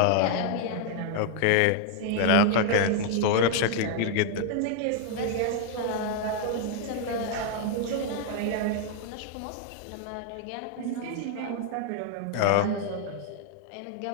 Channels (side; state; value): both; different; correlation 0.00